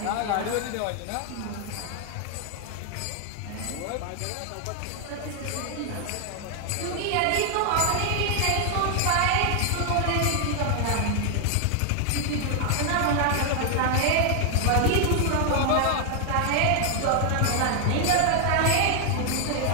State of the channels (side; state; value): both; different; correlation 0.00